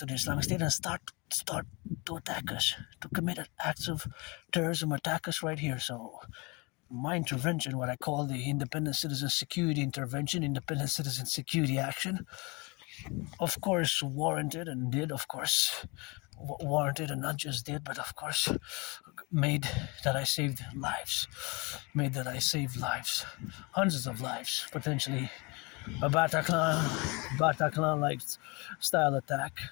the Islamic State, and start to attack us, to commit acts of terrorism, attack us right here. So my intervention, what I call the Independent Citizen Security Intervention, Independent Citizen Security Action, of course warranted and did, of course, warranted and not just did, but of course made that I saved lives. Hundreds of lives, potentially. A Bataclan-like style attack.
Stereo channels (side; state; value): right; quieter; 27.9 dB